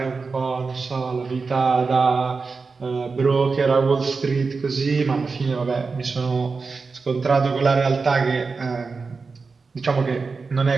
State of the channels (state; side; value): quieter; left; 4.5 dB